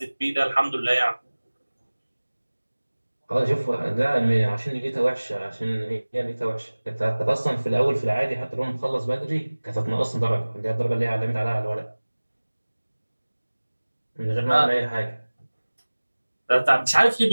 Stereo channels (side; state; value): both; inverted; correlation -1.00